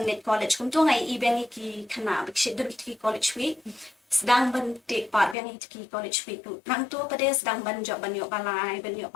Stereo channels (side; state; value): right; drops out; at 5.4 s